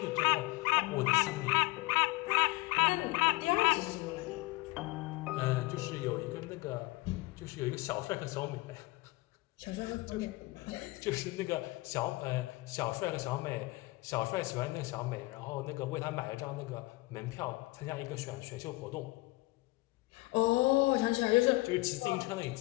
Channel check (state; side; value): quieter; right; 21.9 dB